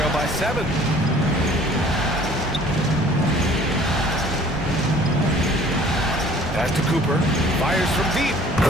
by 7. Pass to Cooper. Fires from deep.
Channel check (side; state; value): both; normal; correlation 0.52